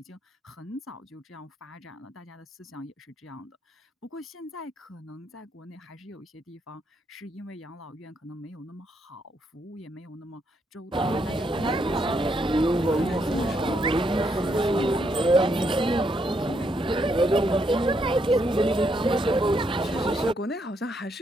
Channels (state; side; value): normal; both; correlation 0.76